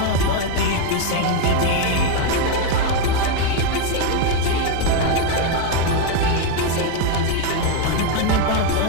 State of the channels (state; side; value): different; both; correlation 0.02